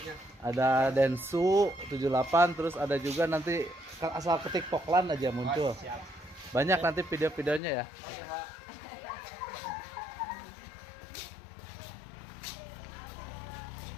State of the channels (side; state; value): right; drops out; at 7.6 s